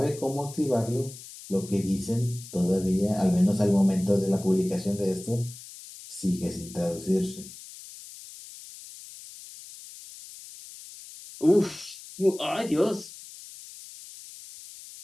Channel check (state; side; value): noise; left; hiss, 16 dB below the sound